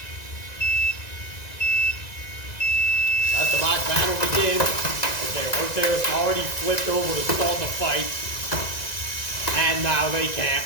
Let the bot battle begin. Okay, Rotator's already flipped over to start the fight. And now they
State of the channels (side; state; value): right; late; 1.9 ms